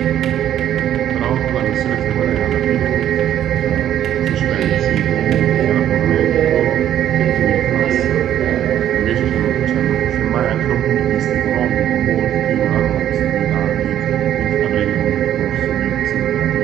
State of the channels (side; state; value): left; quieter; 11.1 dB